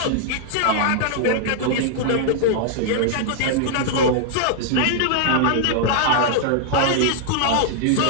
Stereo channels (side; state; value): both; different; correlation -0.01